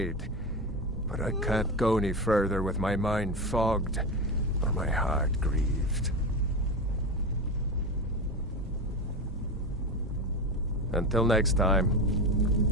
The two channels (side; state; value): both; normal; correlation 0.21